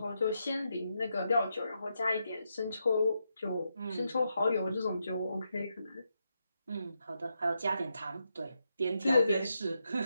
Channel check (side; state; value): both; inverted; correlation -0.83